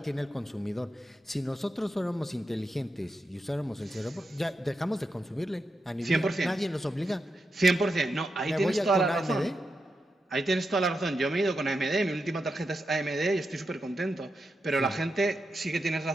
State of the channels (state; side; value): normal; both; correlation 0.87